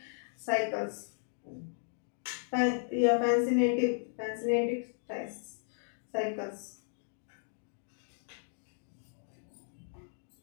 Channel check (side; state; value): right; silent; digital silence